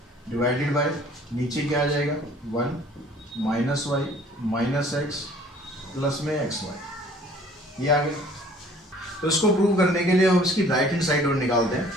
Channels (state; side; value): normal; both; correlation 0.54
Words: डिवाइडेड बाय नीचे क्या आ जाएगा 1 minus y minus x plus में xy, ये आ गया। तो इसको प्रूव करने के लिए हम इसकी राइट हैंड साइड और निकालते हैं।